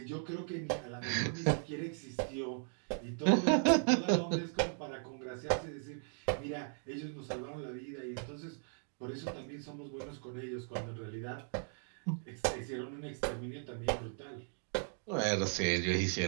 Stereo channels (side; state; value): left; silent; 53 dB below the other